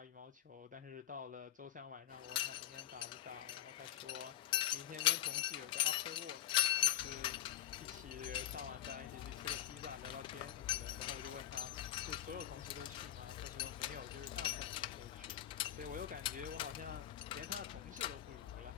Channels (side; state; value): right; quieter; 12.1 dB